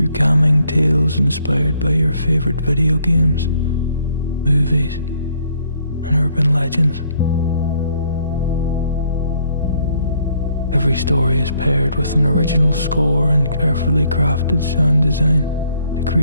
calming tales inspired by your favorite video games, movies, and urban legends. Every story is paired with an original score and carefully crafted sound design to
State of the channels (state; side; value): inverted; both; correlation -0.67